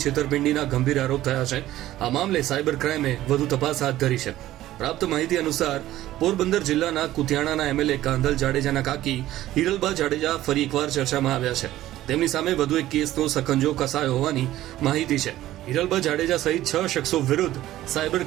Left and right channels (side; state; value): left; quieter; 14.5 dB